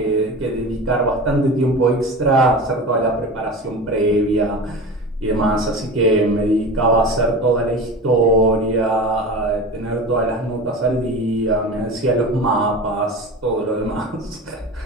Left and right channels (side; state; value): both; normal; correlation 0.31